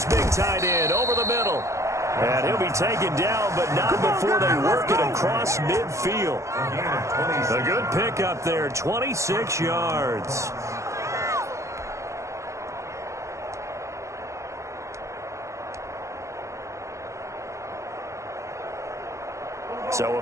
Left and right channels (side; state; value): left; late; 0.15 ms